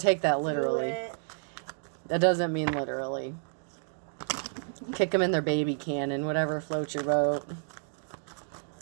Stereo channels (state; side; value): silent; left; digital silence